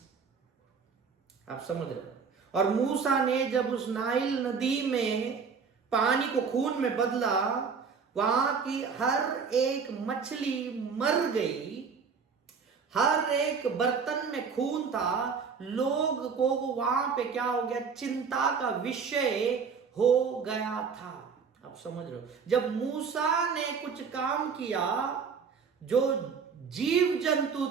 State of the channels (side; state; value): left; quieter; 5.8 dB